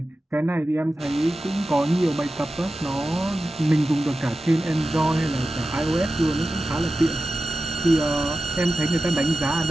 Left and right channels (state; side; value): normal; both; correlation 0.93